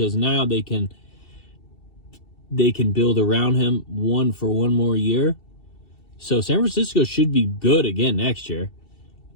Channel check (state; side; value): late; right; 2.7 ms